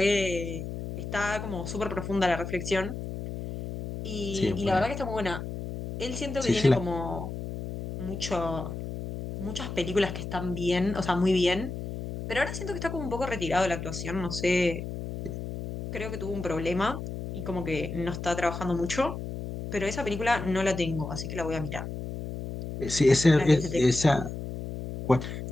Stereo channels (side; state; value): left; noise; hum, 7 dB below the sound